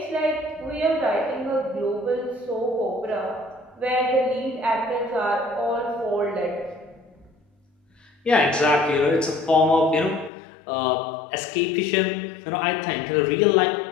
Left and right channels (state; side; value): drops out; right; at 10.3 s